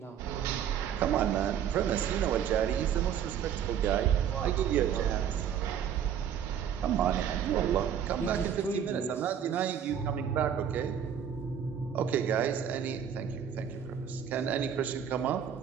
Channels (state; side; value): quieter; left; 8.7 dB